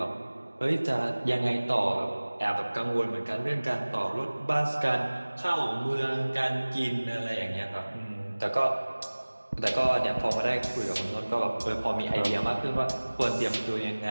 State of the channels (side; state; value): both; inverted; correlation -1.00